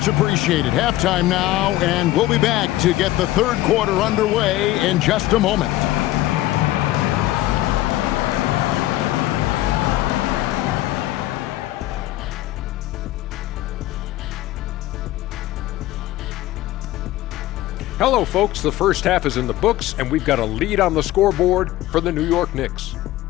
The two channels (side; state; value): right; quieter; 15.8 dB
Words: appreciated. Halftime now, and we'll be back to get the third quarter underway in just a moment. Hello, folks. The first half is in the books, and we've got a lead on the scoreboard for the New York Knicks.